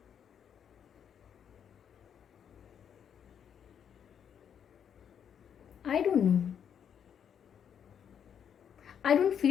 आई don't no, I don't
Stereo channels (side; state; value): right; quieter; 8.3 dB